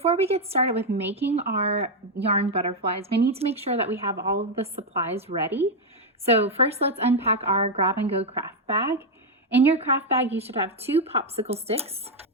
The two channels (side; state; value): both; normal; correlation 0.01